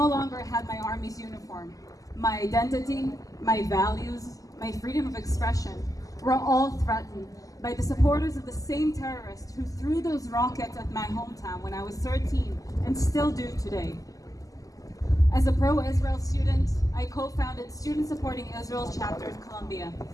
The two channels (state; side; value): late; right; 0.17 ms